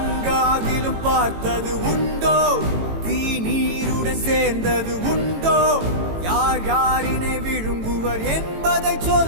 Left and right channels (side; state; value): left; late; 18 ms